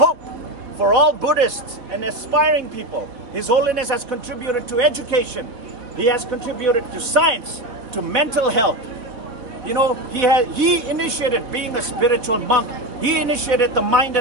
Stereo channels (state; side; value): late; left; 4.0 ms